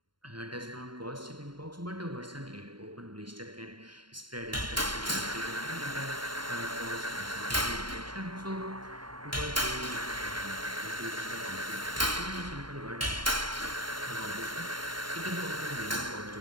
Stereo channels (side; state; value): left; late; 0.72 ms